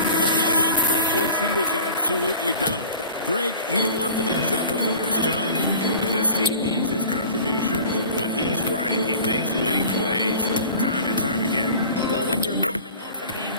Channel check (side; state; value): both; inverted; correlation -0.42